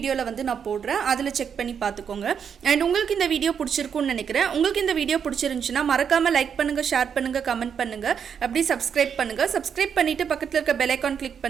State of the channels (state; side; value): quieter; left; 7.4 dB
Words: வந்து நான் போடுறேன், அதில் செக் பண்ணி பார்த்துக்கோங்க. அண்ட் உங்களுக்கு இந்த வீடியோ பிடிச்சிருக்குன்னு நினைக்கிறேன். உங்களுக்கு இந்த வீடியோ பிடிச்சிருந்துச்சுன்னா மறக்காமல் லைக் பண்ணுங்கள், ஷேர் பண்ணுங்கள், கமெண்ட் பண்ணுங்கள், அப்படி சப்ஸ்கிரைப் பண்ணுங்கள். சப்ஸ்கிரைப் பண்ணிவிட்டு பக்கத்தில் இருக்க பெல் ஐக்கான் கிளிக்